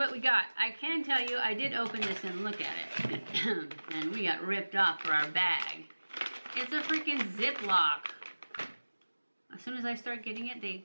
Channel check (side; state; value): both; inverted; correlation -1.00